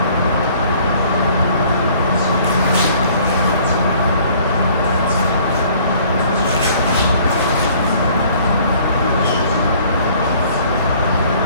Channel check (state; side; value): inverted; both; correlation -0.56